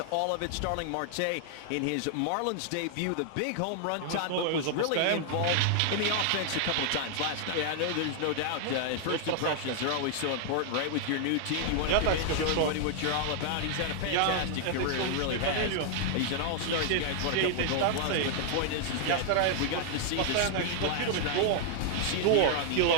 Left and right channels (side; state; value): both; different; correlation 0.00